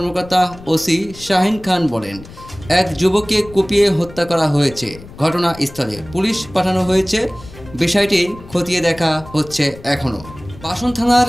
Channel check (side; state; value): left; noise; rumble, 18 dB below the sound